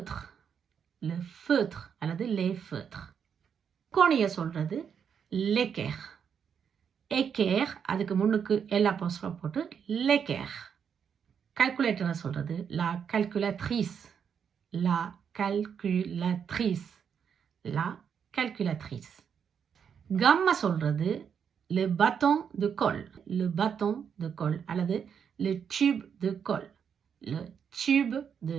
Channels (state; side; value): quieter; left; 7.4 dB